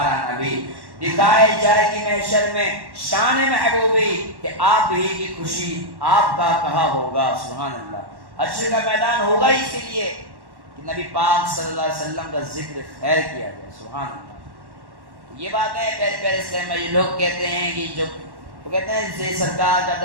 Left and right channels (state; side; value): late; left; 1.1 ms